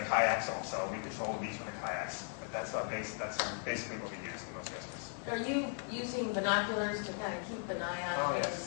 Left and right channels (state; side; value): silent; right; 53 dB below the other